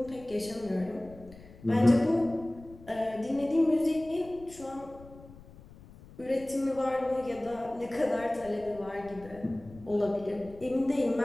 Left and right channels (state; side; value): noise; left; rumble, 20 dB below the sound